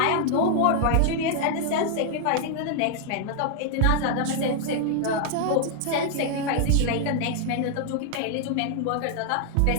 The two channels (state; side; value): different; both; correlation 0.00